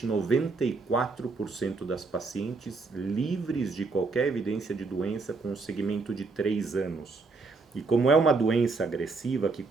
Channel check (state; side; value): quieter; left; 4.0 dB